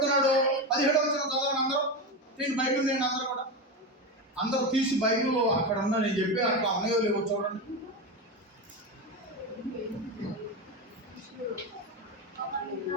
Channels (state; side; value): normal; both; correlation 0.18